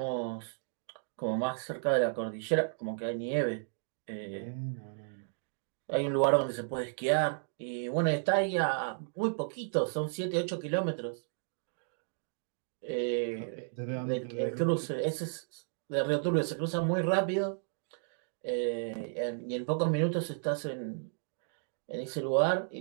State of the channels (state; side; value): silent; left; digital silence